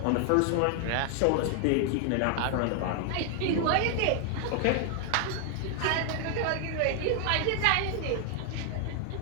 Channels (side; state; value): both; different; correlation 0.00